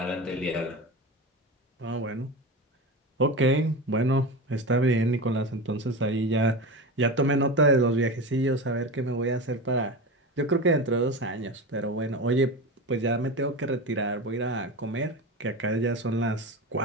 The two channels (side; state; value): both; normal; correlation 0.24